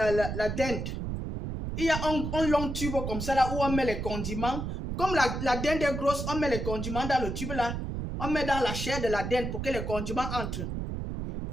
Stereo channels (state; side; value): noise; right; rumble, 4 dB below the sound